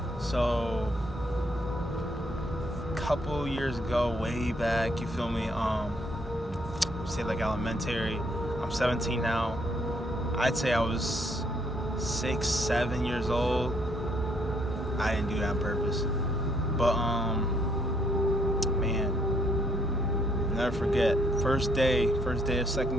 So, a couple years ago, way back, you feel me? Say like elementary. I'm 17 now. I'd say I was 6, 7 years old. I didn't do that on purpose, but man, never forget. First day of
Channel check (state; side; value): normal; both; correlation 0.69